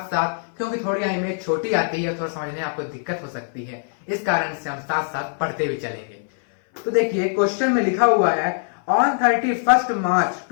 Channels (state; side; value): silent; right; 59 dB below the other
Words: साथ, क्योंकि थोड़ी इमेज छोटी आती है, थोड़ा समझने में आपको दिक्कत हो सकती है, इस कारण से हम साथ साथ पढ़ते भी चलेंगे। तो देखिए, क्वेश्चन में लिखा हुआ है on 31st March